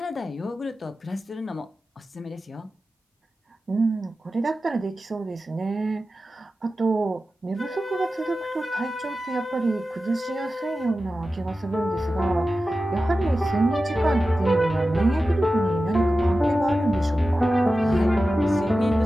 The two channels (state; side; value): normal; both; correlation 0.94